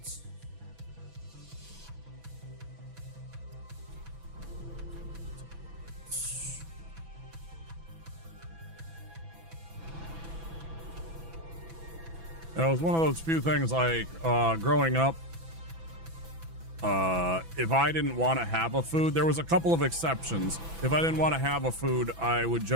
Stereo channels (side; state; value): left; late; 6.0 ms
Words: It was one of those few things like growing up, if I didn't want to have a food, there was a couple of exceptions. If I didn't want to have a food, I would